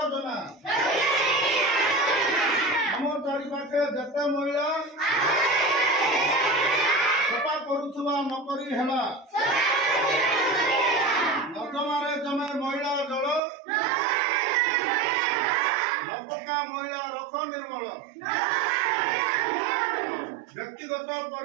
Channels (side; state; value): left; drops out; at 13.4 s